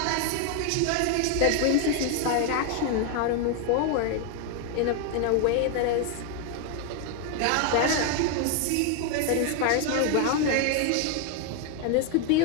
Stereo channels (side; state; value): both; different; correlation 0.01